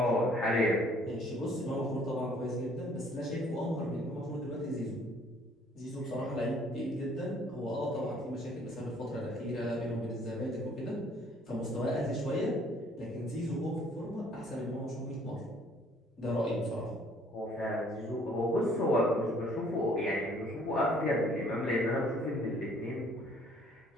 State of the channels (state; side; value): normal; both; correlation 0.59